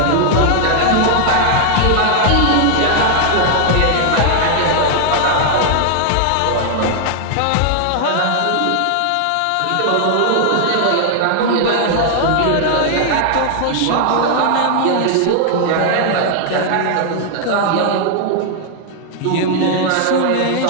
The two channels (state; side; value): different; both; correlation 0.00